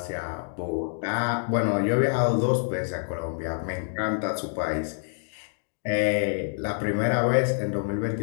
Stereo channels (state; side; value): silent; right; digital silence